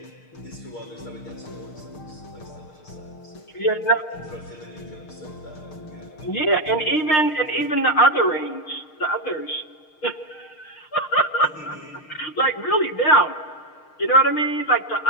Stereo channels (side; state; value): right; late; 6.5 ms